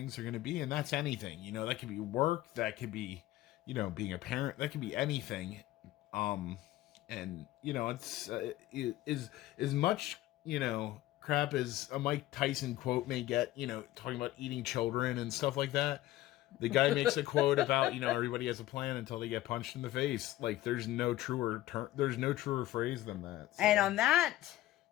are going to be, and that's anything. You know, that could be work, that could be, you know, being a parent, that could be anything. And you know, it's is as much, you know, crap as a Mike Tyson quote may get, you know, talking about eating children and stuff like that. The guy makes a quote about, you know, everybody has a plan until they get punched in the face. Like, there's no truer phrase than that. So. And on that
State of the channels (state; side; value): quieter; right; 15.6 dB